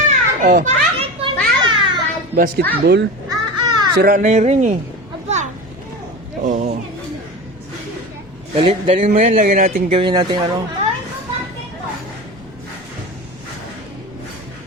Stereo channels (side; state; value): both; normal; correlation 0.29